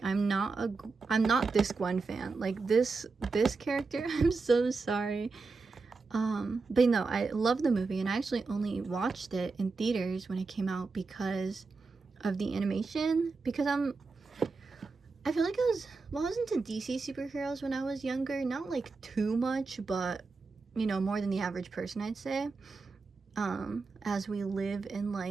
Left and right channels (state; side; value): quieter; left; 4.2 dB